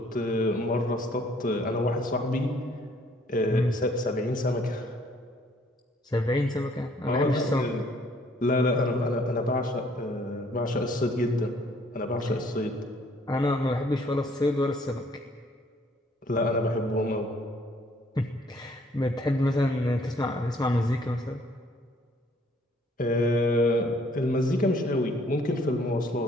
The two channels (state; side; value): normal; both; correlation 0.62